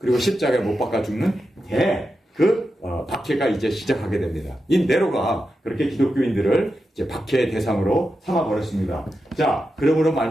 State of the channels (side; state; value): both; normal; correlation 0.89